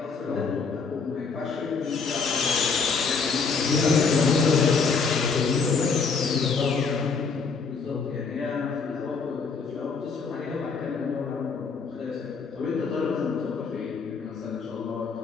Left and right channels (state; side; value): quieter; right; 5.1 dB